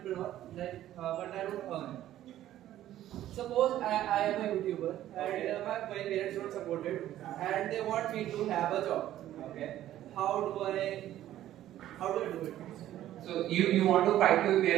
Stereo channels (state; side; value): quieter; left; 13.0 dB